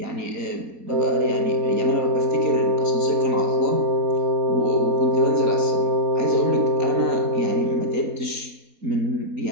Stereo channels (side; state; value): left; late; 4.2 ms